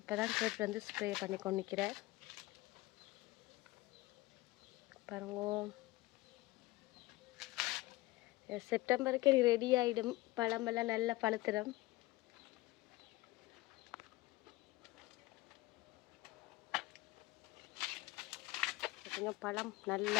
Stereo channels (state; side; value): quieter; right; 19.4 dB